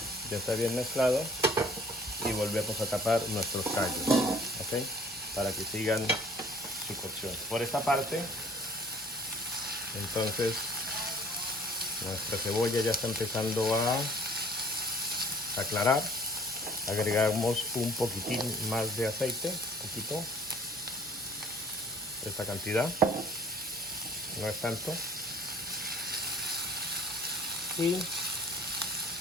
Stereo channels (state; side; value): normal; both; correlation 0.52